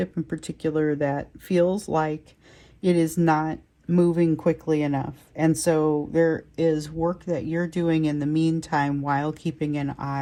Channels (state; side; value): identical; both; correlation 1.00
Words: in particular that feels like it is not moving quickly enough. And so there is work that you're doing in the meantime while keeping an